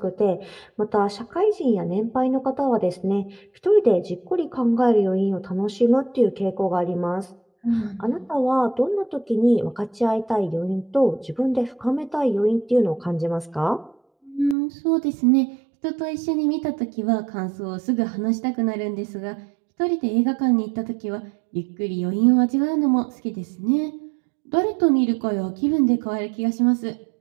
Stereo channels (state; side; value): drops out; left; at 14.6 s